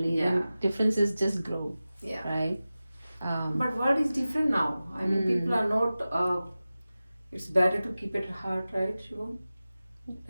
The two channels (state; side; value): inverted; both; correlation -0.96